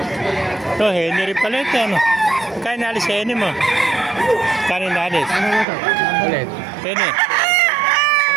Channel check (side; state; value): left; drops out; at 5.7 s